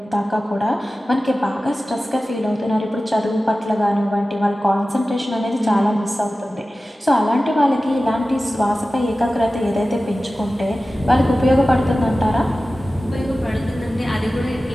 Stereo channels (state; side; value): normal; both; correlation 0.95